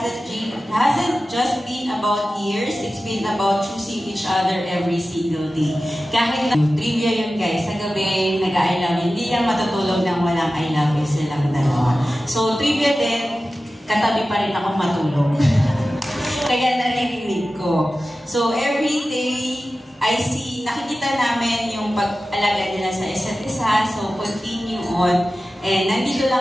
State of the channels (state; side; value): normal; both; correlation 0.95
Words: just been about years, it's been about choosing each other every single day. Kahit na trivia yun guys, sa gabi nag-I love you, hindi lang matutulog ng walang I love you silang dalawa. So trivia din, katabi pa rin ako matulog. Kaya naririnig ko. So every day, I see, nakikita namin yung pag-alaga nila sa isa't isa, so continue on. And nandito